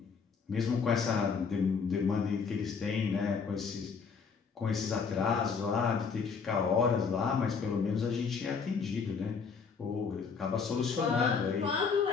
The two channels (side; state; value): right; quieter; 5.6 dB